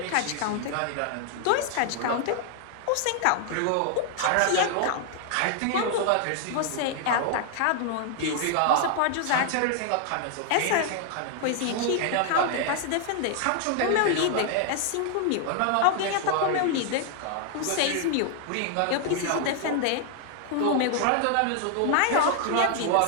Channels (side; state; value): both; different; correlation 0.00